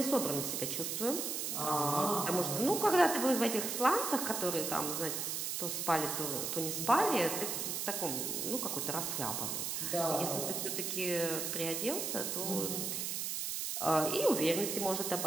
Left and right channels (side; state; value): right; noise; hiss, 2 dB below the sound